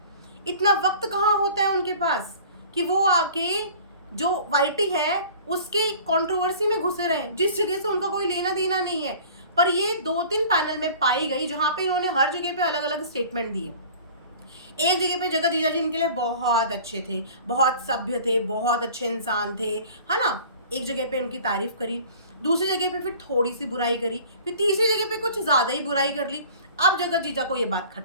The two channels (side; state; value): both; inverted; correlation -0.45